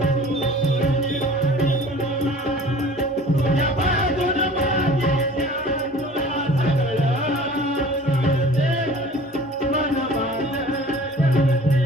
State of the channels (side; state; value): both; normal; correlation 0.45